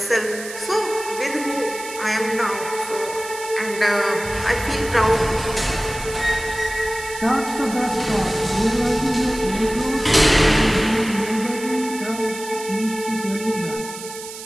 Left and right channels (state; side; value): noise; right; hiss, 12 dB below the sound